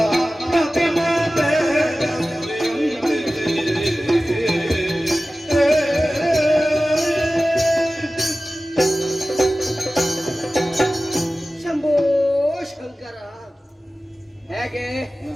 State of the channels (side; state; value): both; normal; correlation 0.96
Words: ಪ್ರತಿಮತೆ ಶಂಭೋ ಶಂಕರ. ಹೇಗೆ